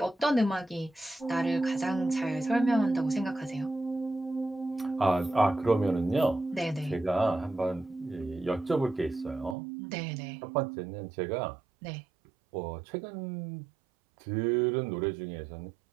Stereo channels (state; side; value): drops out; left; at 9.6 s